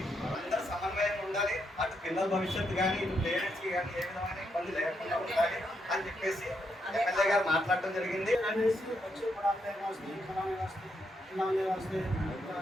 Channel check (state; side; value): normal; both; correlation 0.79